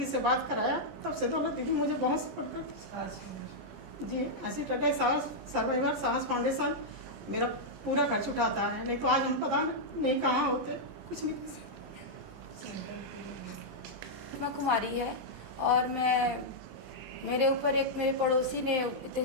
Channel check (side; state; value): left; late; 17 ms